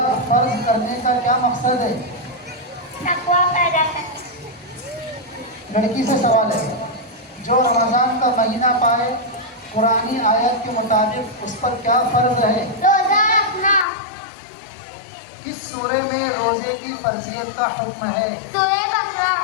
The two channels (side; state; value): right; drops out; at 13.9 s